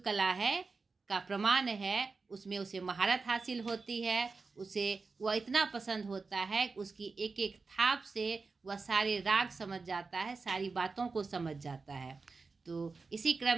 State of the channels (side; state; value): left; quieter; 4.3 dB